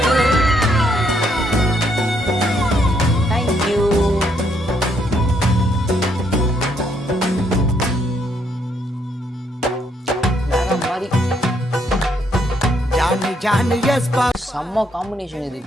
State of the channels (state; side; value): normal; both; correlation 0.72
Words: தேங்க்யூ. வேற மாதிரி ஜானி ஜானி எஸ் பா. செம்ம காம்பினேஷன் இது,